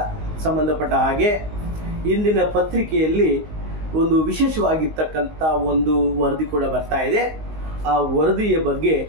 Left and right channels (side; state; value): left; late; 19 ms